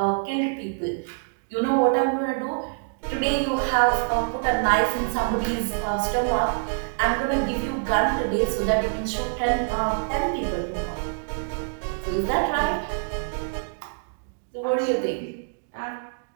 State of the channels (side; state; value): left; silent; digital silence